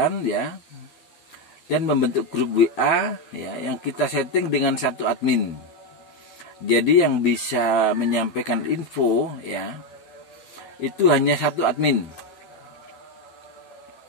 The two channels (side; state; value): right; late; 12 ms